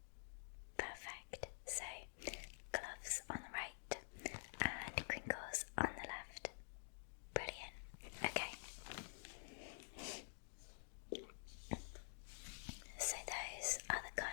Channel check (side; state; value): right; silent; digital silence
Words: Perfect. So, gloves on the right and crinkles on the left. Brilliant. Okay. So those are the